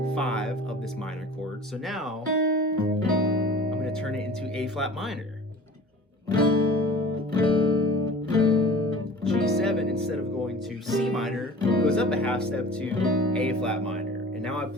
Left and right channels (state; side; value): normal; both; correlation 0.42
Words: of this minor chord. So now I'm going to turn it into A flat minor. G7, instead of going to C minor, goes up a half step to A flat minor. And now I